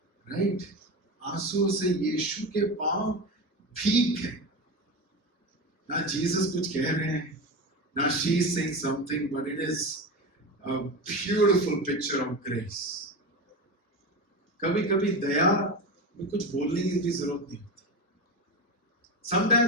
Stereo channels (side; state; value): both; normal; correlation 0.22